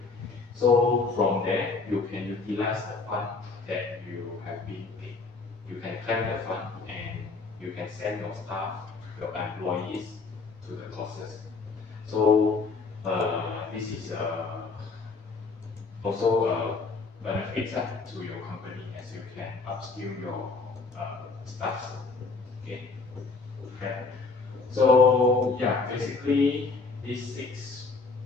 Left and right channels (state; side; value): quieter; right; 4.2 dB